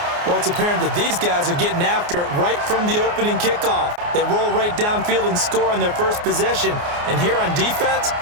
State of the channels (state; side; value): late; left; 29 ms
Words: Well, it's apparent that these guys are getting after it right from the opening kickoff. They roll right downfield and score on their first possession. And here on defense,